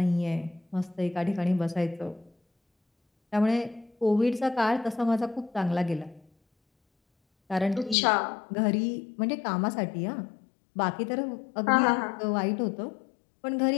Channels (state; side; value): drops out; right; at 8.0 s